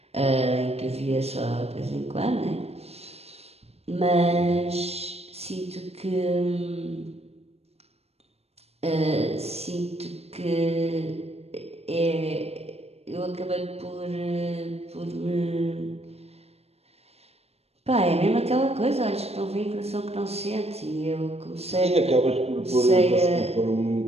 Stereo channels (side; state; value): left; late; 0.30 ms